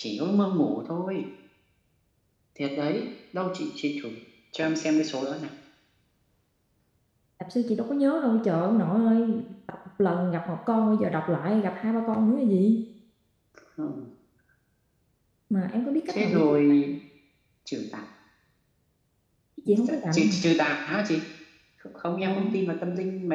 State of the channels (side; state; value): both; identical; correlation 1.00